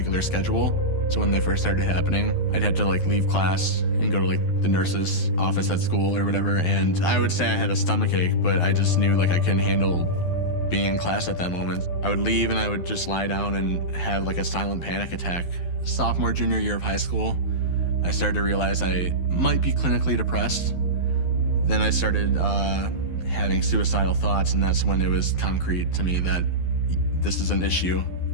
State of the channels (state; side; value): late; right; 12 ms